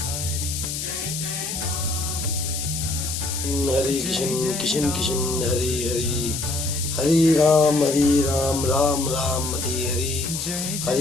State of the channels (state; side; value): noise; left; hiss, 4 dB below the sound